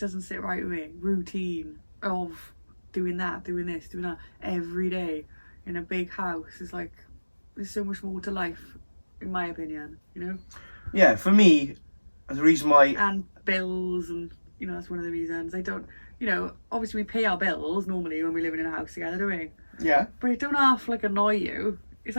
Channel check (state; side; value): inverted; both; correlation -1.00